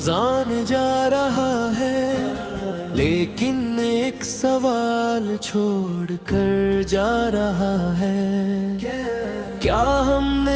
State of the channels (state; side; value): identical; both; correlation 1.00